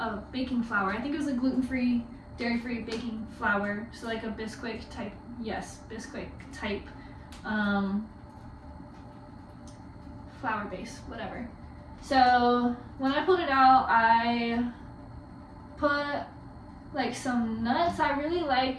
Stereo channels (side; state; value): both; identical; correlation 1.00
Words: baking flour. I think it was a gluten-free, dairy-free baking flour, so like a Bisquick type, yes, Bisquick type flour base, whatever. So when I pulled it out, I put like some nuts. I really like